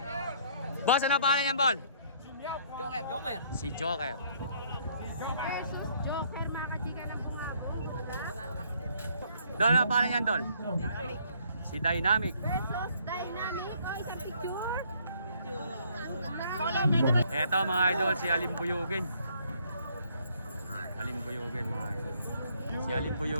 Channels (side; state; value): both; inverted; correlation -0.65